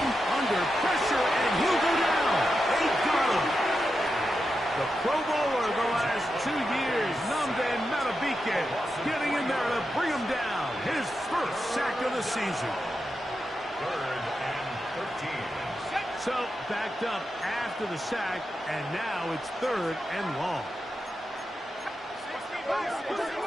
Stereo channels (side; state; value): both; normal; correlation 0.88